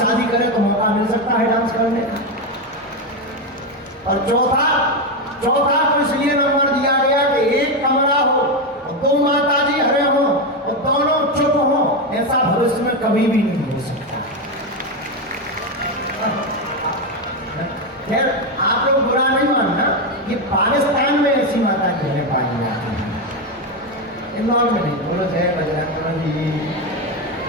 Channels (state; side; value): normal; both; correlation 0.10